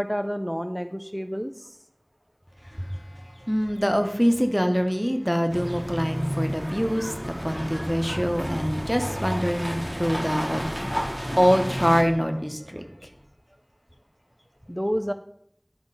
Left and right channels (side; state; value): both; identical; correlation 1.00